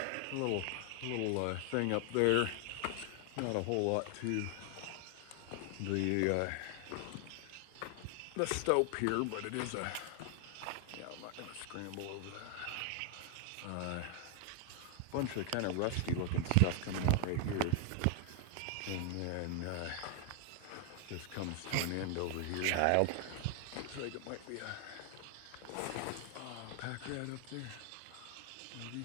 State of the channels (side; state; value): both; different; correlation 0.00